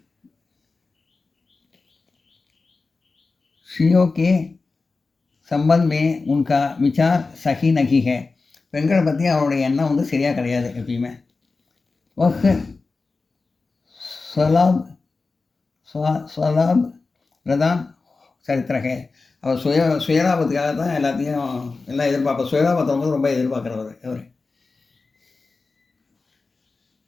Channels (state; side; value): quieter; right; 3.9 dB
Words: ஸ்ரீயோ के संबंध में उनका विचार सही नहीं है. பெண்களை பற்றி அவருடைய எண்ணம் வந்து சரியாக கிடையாது எப்பயுமே. वह स्वलाभ प्रधान சரித்திர है. அவர் சுயலாபத்துக்காக தான் எல்லாம் எதிர்பார்ப்பார். சுயலாபத்தை வந்து ரொம்ப எதிர்பார்க்குறவர் அவர்.